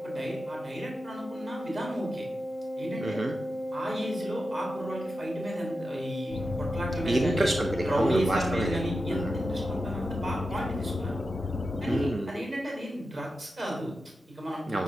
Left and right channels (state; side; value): normal; both; correlation 0.90